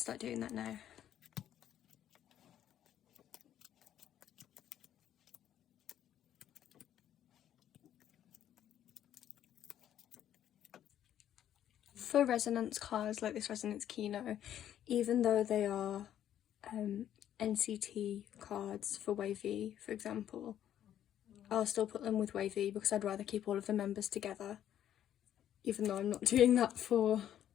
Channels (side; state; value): right; quieter; 10.9 dB